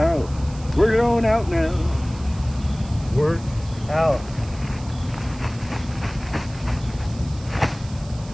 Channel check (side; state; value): right; noise; hiss, 21 dB below the sound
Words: Work it on out now. Work out.